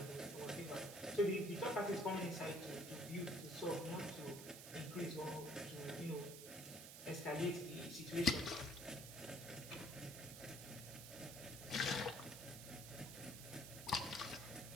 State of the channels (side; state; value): right; noise; hiss, 10 dB below the sound